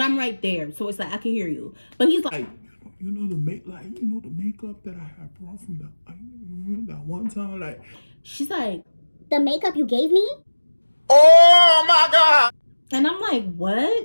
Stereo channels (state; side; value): inverted; both; correlation -1.00